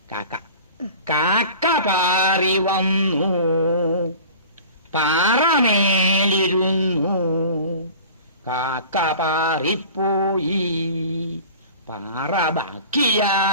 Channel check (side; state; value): both; inverted; correlation -0.41